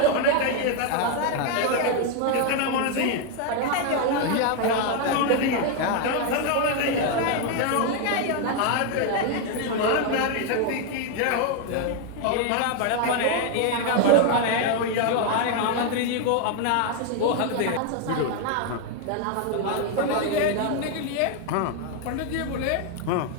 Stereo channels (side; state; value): both; different; correlation 0.01